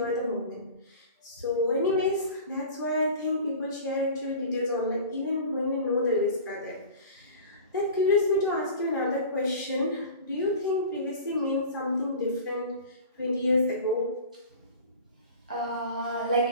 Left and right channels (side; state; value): both; inverted; correlation -0.38